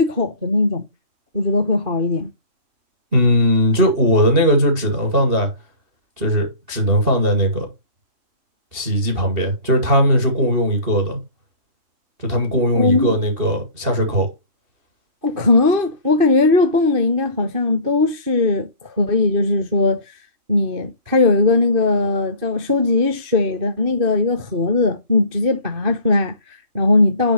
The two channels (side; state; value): left; late; 2.7 ms